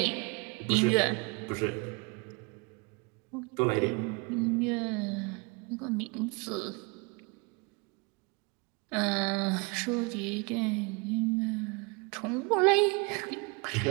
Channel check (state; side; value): quieter; left; 30.1 dB